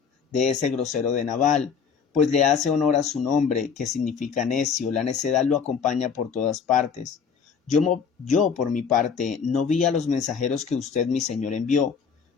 de ese grosero de Nabal, pues le hace honor a su nombre, que significa necio. La necedad lo acompaña por todas partes. Yo, por mi parte, no vi a los mensajeros que usted, mi señor, envió,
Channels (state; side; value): quieter; right; 6.4 dB